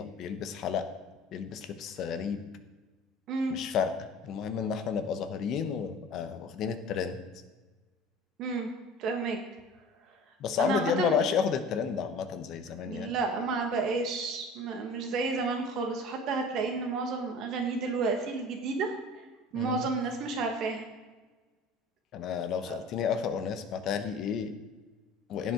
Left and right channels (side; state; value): both; normal; correlation 0.42